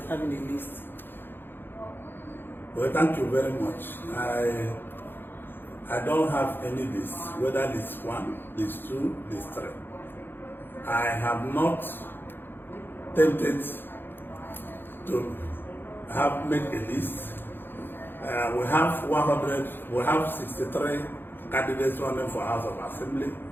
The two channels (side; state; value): right; late; 0.10 ms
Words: having a list. Well, thank you very much. I don't have any list, whether list 1, list 2, list 3. I have not tempted to make a list. We have 63 candidates running for House of Assembly.